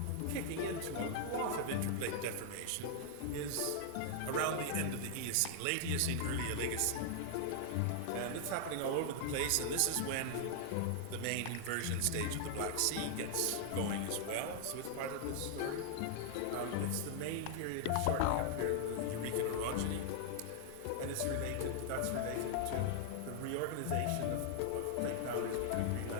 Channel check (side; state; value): both; different; correlation 0.00